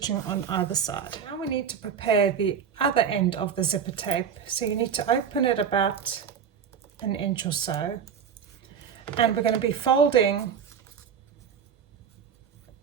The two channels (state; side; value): quieter; left; 7.5 dB